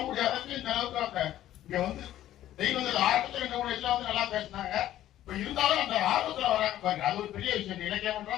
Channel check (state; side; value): quieter; right; 13.0 dB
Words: முடியாததுக்கு இந்த அளவுக்கு இங்க வந்து தெய்வங்கள் ஆரம்பத்துல இந்த மூணு வயசுல வந்து நல்லா பேசினாங்க. இப்ப இருந்தாலும் அந்த ஆர்வத்துல வராங்க பாருங்க, அது ஒரு பெரிய விஷயம். இலக்கியம்